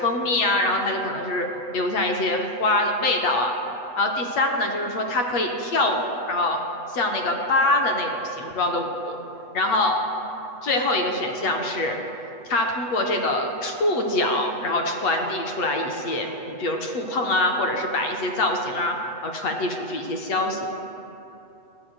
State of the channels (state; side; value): late; right; 8.1 ms